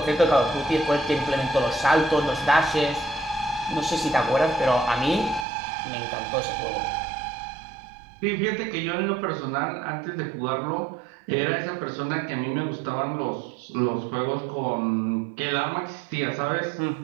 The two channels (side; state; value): left; drops out; at 5.5 s